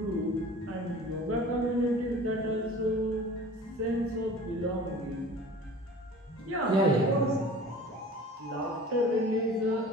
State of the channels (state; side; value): normal; both; correlation 0.42